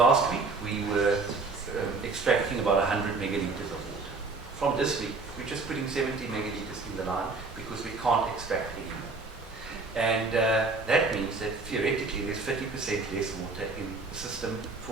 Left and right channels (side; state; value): left; quieter; 3.8 dB